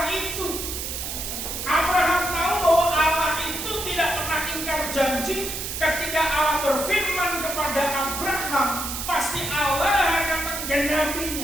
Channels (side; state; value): right; noise; hiss, 5 dB below the sound